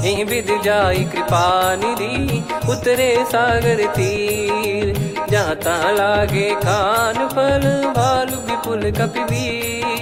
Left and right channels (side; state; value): both; identical; correlation 1.00